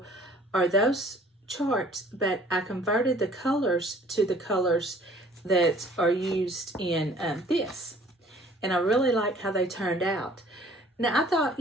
are those charts, but I converted the colors to the colors that are used in this. And I really like how they turned out. Now, I thought,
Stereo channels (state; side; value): normal; both; correlation 0.54